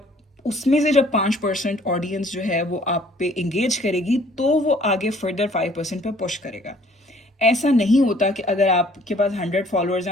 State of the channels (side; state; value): both; normal; correlation 0.58